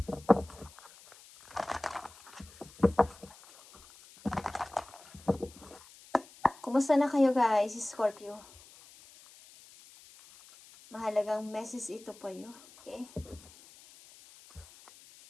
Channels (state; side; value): noise; left; hiss, 22 dB below the sound